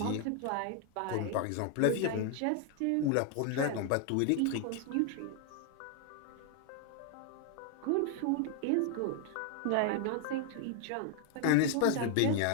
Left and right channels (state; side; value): different; both; correlation 0.00